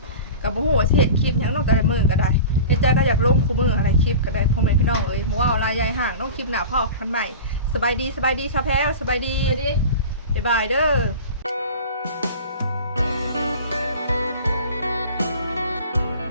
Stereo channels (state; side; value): inverted; both; correlation -0.35